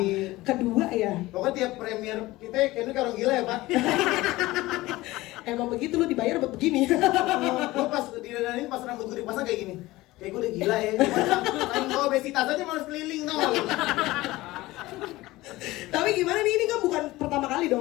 Kedua ya. Pokoknya tiap premier kita kayaknya kalau gila ya Pak. Emang begitu lu dibayar buat begini. Gue pas didandanin pas rambut gue dipasang kayak gini. Kayak gue udah gila ya. Main gue obesitas aja malas keliling tau. Tapi gimana nih, ini kan bukan pertama kali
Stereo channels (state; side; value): quieter; right; 18.7 dB